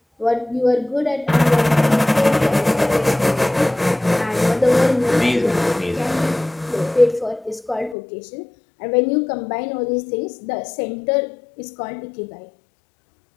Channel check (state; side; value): drops out; right; at 8.0 s